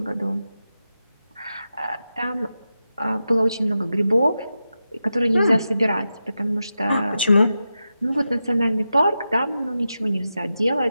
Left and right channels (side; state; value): both; inverted; correlation -0.90